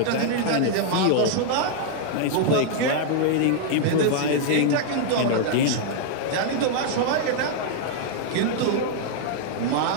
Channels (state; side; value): different; both; correlation -0.01